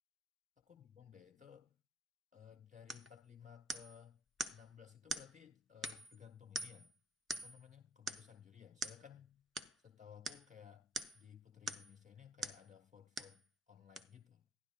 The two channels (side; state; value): both; normal; correlation 0.60